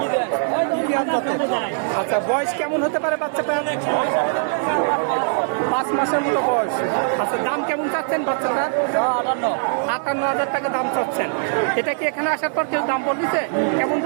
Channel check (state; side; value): silent; left; digital silence